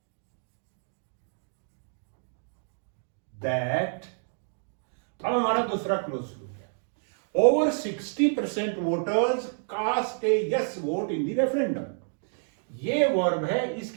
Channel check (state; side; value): silent; left; 57 dB below the other